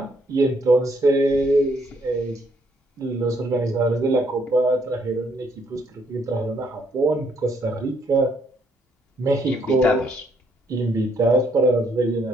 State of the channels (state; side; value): normal; both; correlation 0.69